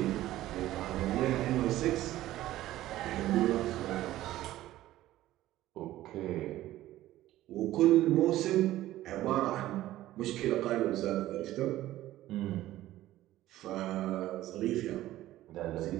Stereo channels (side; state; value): left; quieter; 14.9 dB